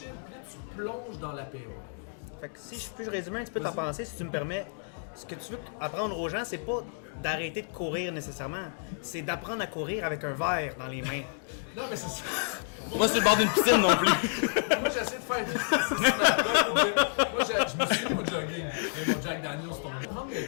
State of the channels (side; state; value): right; silent; digital silence